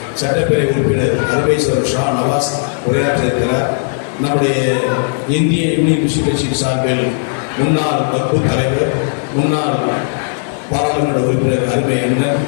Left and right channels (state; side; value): silent; right; digital silence